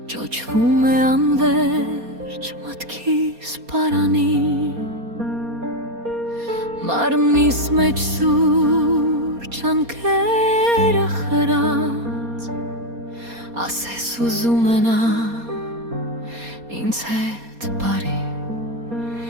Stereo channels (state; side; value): late; left; 4.2 ms